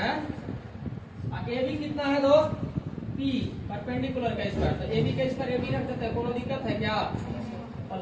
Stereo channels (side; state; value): both; identical; correlation 1.00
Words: AB कितना है दोस्त? P परपेंडिकुलर का स्क्वायर। तो AB का स्क्वायर AB रख देते हैं, कोनो दिक्कत है क्या?